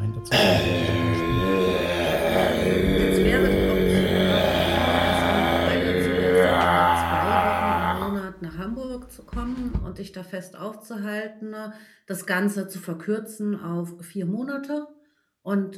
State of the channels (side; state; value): both; identical; correlation 1.00